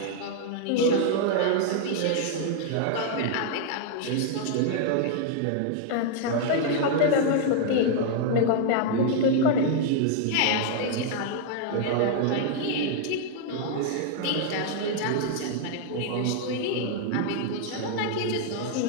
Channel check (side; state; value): both; different; correlation 0.00